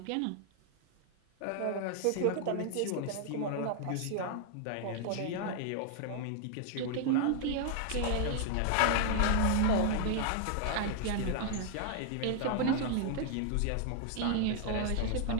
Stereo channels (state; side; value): different; both; correlation 0.00